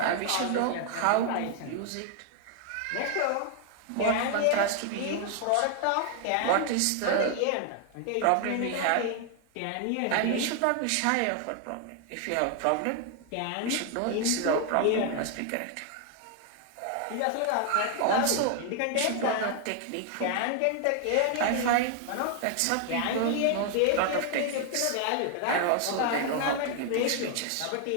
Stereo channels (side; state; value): both; different; correlation 0.00